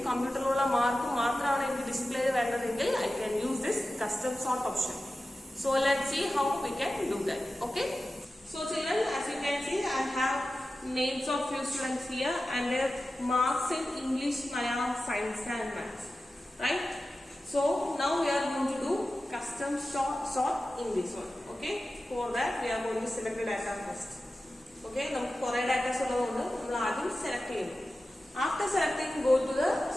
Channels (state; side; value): normal; both; correlation 0.94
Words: കമ്പ്യൂട്ടറിലുള്ള മാർക്കും മാത്രമാണ് എനിക്ക് ഡിസ്പ്ലേ വരുന്നതെങ്കിൽ I can use this custom sort option. So let's see how we can do that. Okay, so children, as you can see I have names of few students here and their marks in English, Malayalam, Science and Maths, right? So now we are going to do custom sort in this one. Okay, for that we are going to select the data first. Okay, നമുക്ക് കുറേ ഡാറ്റാസ് ഉള്ളതുകൊണ്ട് നമ്മൾ ആദ്യം സെലക്ട് ചെയ്യുന്നു. After selecting, go to the